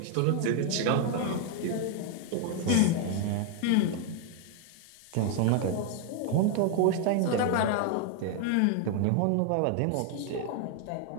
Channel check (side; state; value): both; different; correlation 0.00